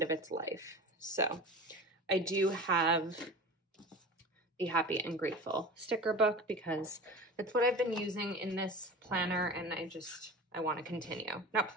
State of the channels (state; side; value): normal; both; correlation 0.34